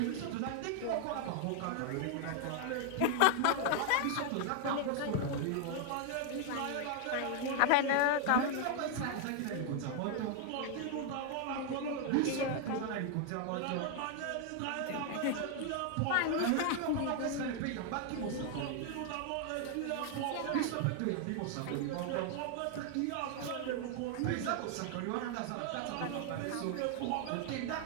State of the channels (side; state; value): both; different; correlation 0.00